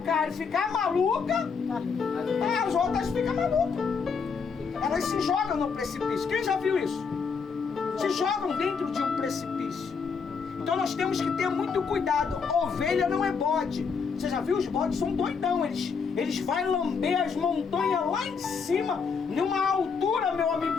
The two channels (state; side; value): quieter; right; 5.6 dB